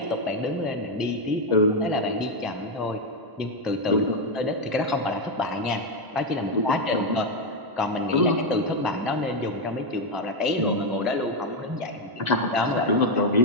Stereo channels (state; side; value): late; left; 1.0 ms